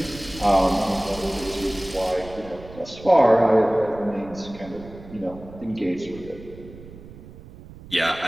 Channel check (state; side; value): noise; right; rumble, 17 dB below the sound